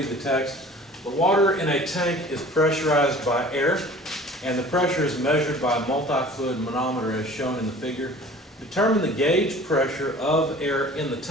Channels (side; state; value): both; normal; correlation 0.45